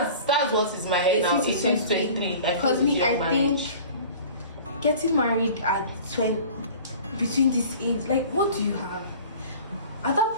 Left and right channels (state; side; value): inverted; both; correlation -0.43